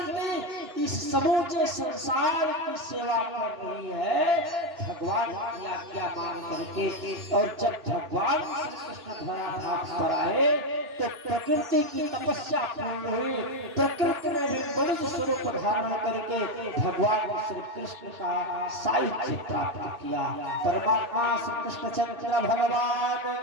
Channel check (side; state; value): left; late; 2.9 ms